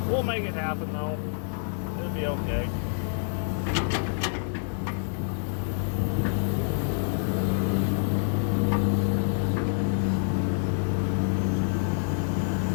we'll make it happen though. It'll be okay.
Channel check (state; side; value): silent; right; digital silence